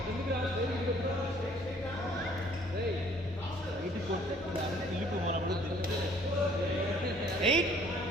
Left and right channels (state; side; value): normal; both; correlation 0.58